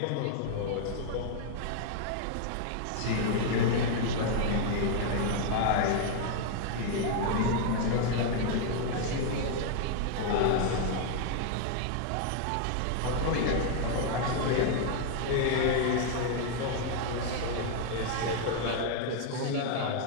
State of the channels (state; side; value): different; both; correlation 0.00